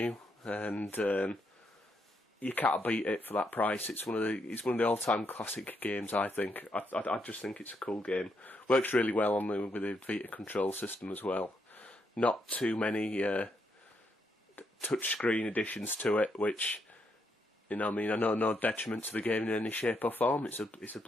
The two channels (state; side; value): normal; both; correlation 0.78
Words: and you can't beat it for that price. It's one of the all-time classic games. I think. I just think it's a cool game. Works really well with the Vita control system as well. Not too many touchscreen additions to it, which, you know, I mean, I know no detriment to the game in any shape or form. It's a